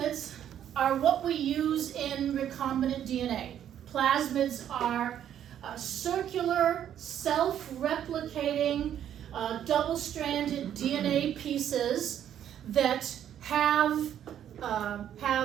are what we use in recombinant DNA. Plasmids are circular, self-replicating, double-stranded DNA pieces that have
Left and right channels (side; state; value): left; quieter; 10.2 dB